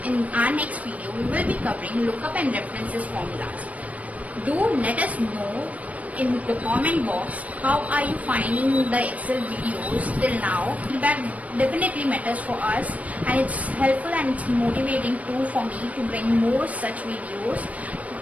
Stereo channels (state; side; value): late; left; 0.069 ms